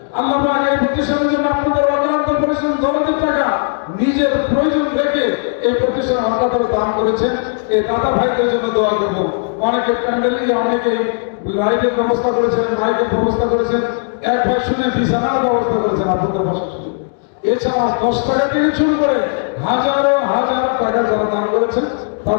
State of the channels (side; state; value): right; silent; 68 dB below the other